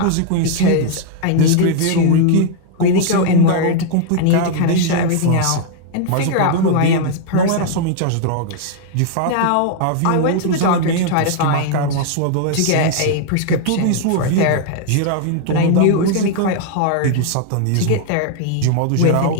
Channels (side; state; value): both; different; correlation 0.00